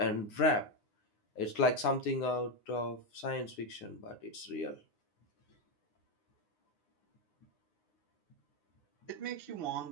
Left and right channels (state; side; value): late; right; 9.7 ms